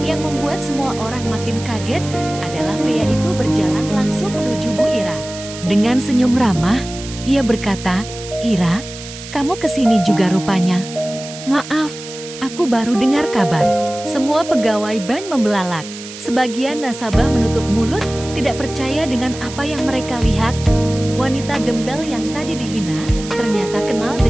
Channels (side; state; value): right; noise; hiss, 13 dB below the sound